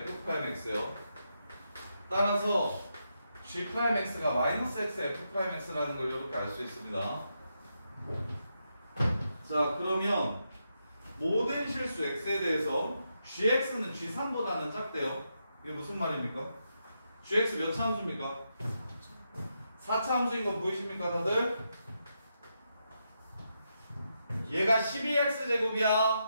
f'x요. 따라서 G'X가 마이너스 x f'x라는 걸 이렇게 알 수 있습니다. 자, 그러면 모든 실수 x에 대해서 gx는 g3보다는 작대요. 이게 무슨 말입니까? gx 몇 차 함수입니까? 4차 함수인 거 보이십니까 다들? 얘가 12x제곱이야.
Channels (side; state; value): both; inverted; correlation -0.83